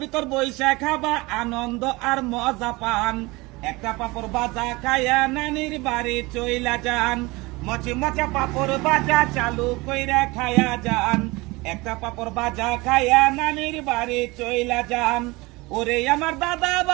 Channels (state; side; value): quieter; left; 23.1 dB